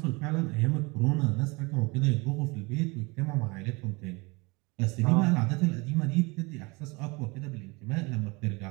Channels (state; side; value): quieter; left; 26.5 dB